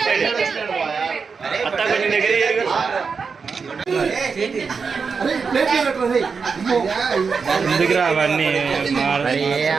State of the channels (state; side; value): quieter; left; 5.3 dB